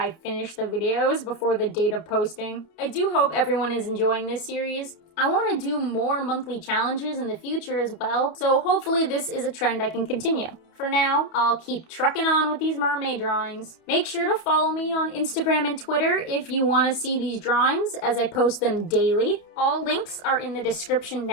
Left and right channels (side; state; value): right; late; 31 ms